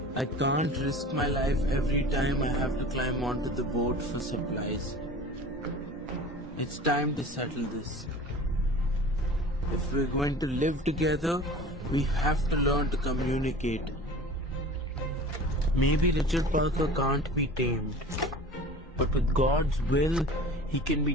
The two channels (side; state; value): both; normal; correlation 0.40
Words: I can't risk my life every time I have to climb onto the boat for supplies. It's time to settle this. If we're going to live together, we have to learn to communicate. Maybe Richard Parker can't be tamed, but with God's will, he can